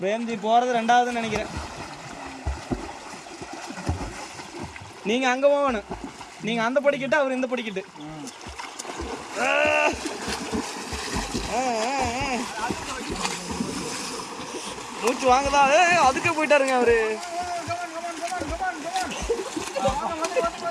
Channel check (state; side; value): identical; both; correlation 1.00